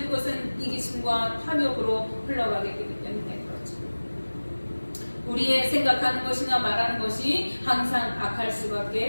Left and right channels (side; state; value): both; inverted; correlation -1.00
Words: 그것은 이기심과 탐욕으로 흘러가게 되기 때문에 그렇죠. 우리의 생각하는 것이나 말하는 것이 항상 악할